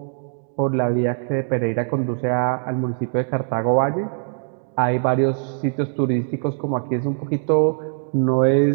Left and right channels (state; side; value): silent; left; digital silence